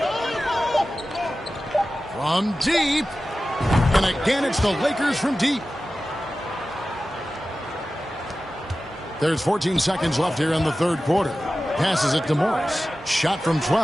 From deep. And again, it's the Lakers from deep. There's 14 seconds left here in the third quarter. Passes it to Morris. Shot from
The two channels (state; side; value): normal; both; correlation 0.95